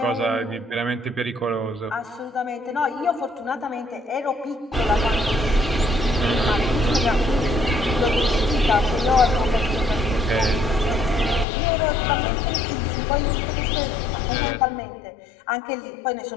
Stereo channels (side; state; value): right; drops out; at 11.5 s